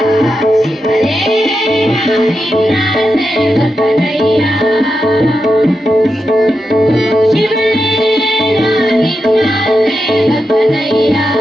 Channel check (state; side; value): normal; both; correlation 0.87